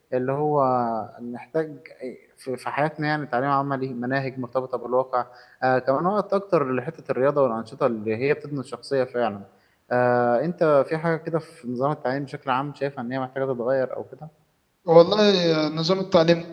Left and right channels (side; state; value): both; identical; correlation 1.00